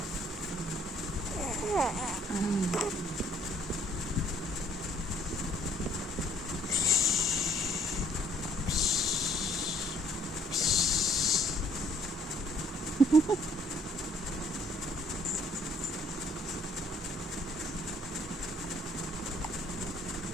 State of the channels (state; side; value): normal; both; correlation 0.63